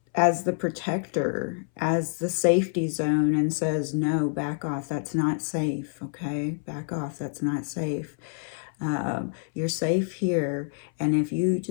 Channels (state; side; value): silent; right; 60 dB below the other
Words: as the protector, as the safety zone, and says, no, back off, that's not safe, okay? Back off, that's not safe. You're safe here, and if you